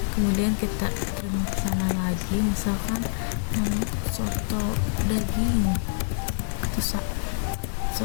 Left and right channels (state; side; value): silent; right; digital silence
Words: kemudian kita terima pesanan lagi, misalkan soto daging atau